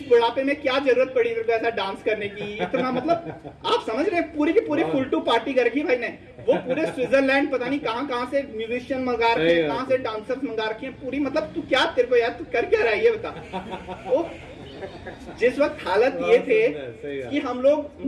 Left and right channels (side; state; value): both; identical; correlation 1.00